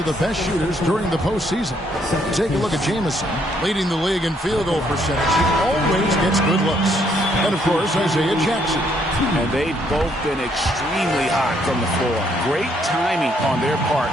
the best shooters during the postseason. Take a look at Jamison, leading the league in field goal percentage. He always gets good looks. And, of course, Isaiah Jackson. And they've both been extremely hot from the floor. Great timing on their part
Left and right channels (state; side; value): normal; both; correlation 0.70